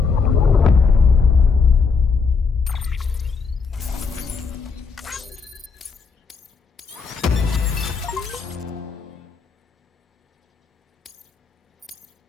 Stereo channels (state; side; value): quieter; right; 5.1 dB